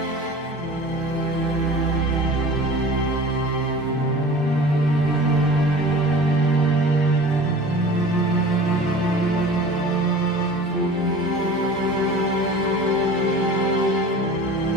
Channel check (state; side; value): normal; both; correlation 0.40